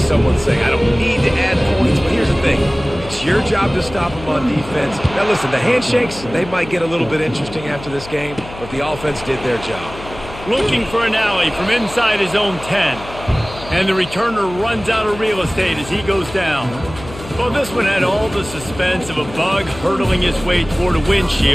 say I don't need to add points. But here's the thing. It's your job to stop them on defense. Now, listen, the handshakes, they might get a little bit interesting after this game, but the offense did their job. Looking for an alley from inside his own 10. And the returner runs out of real estate as he goes down. Well, this one had all the suspense of a bug hurtling his way toward a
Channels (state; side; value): noise; left; hum, 15 dB below the sound